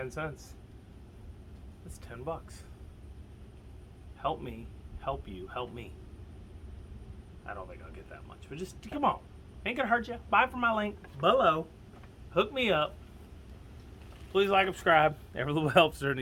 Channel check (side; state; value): both; identical; correlation 1.00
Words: cents, that's 10 bucks. Help me, help you, help me. I don't think I'll get that much, but just come on. Ain't gonna hurt you. Buy from my link below. Hook me up. Please like, subscribe. Every little helps during